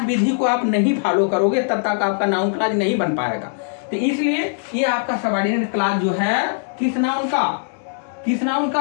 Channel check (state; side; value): silent; right; digital silence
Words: विधि को आप नहीं फॉलो करोगे तब तक आपका नाउन क्लॉज नहीं बन पाएगा। तो इसलिए ये आपका सबऑर्डिनेट क्लॉज जो है किस नाउन